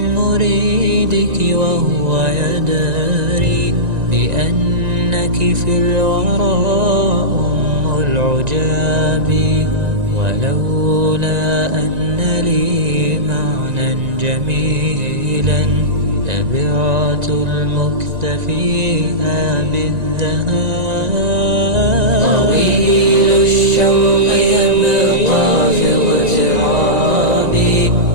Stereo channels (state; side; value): late; left; 1.9 ms